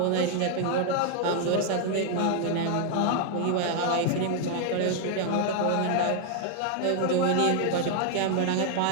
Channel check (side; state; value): both; different; correlation 0.00